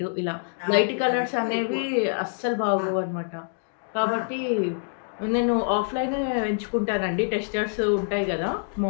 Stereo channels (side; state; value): right; silent; 61 dB below the other